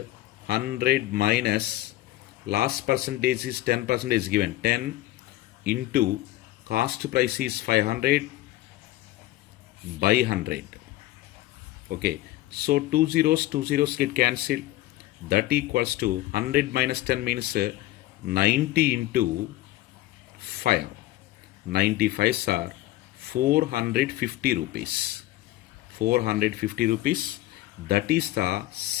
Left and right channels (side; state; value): right; quieter; 16.3 dB